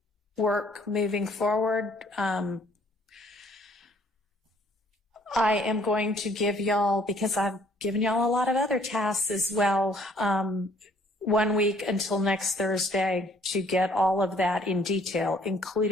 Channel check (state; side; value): normal; both; correlation 0.61